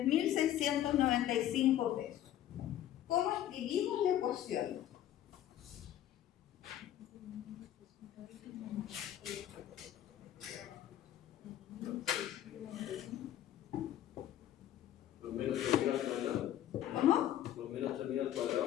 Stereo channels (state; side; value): quieter; right; 11.9 dB